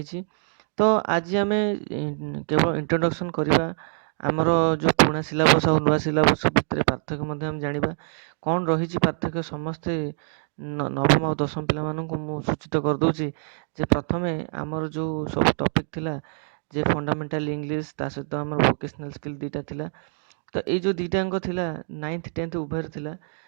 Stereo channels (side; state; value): left; silent; 58 dB below the other